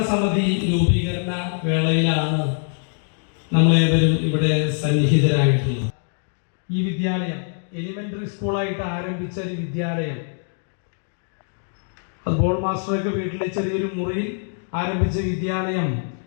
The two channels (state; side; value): silent; right; 63 dB below the other